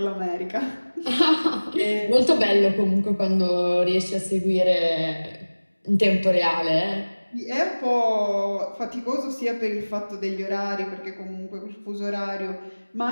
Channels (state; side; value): inverted; both; correlation -1.00